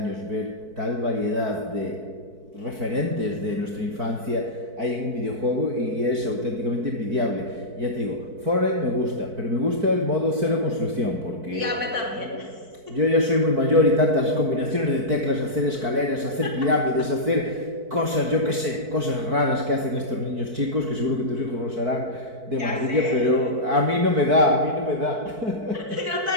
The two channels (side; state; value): left; late; 4.5 ms